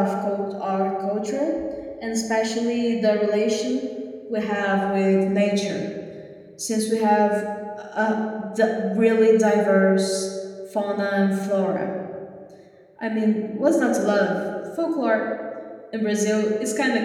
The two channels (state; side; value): identical; both; correlation 1.00